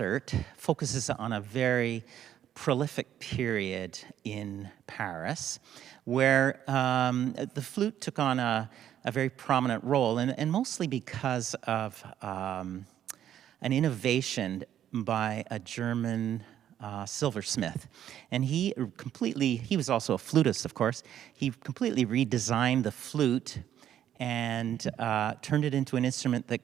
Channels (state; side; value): quieter; left; 10.7 dB